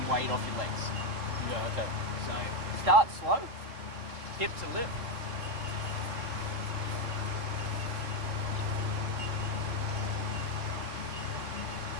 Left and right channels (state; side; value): late; left; 3.8 ms